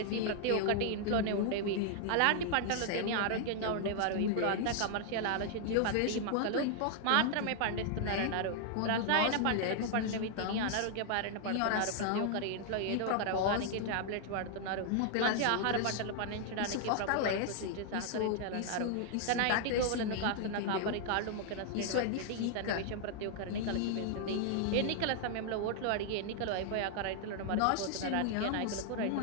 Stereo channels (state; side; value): different; both; correlation 0.00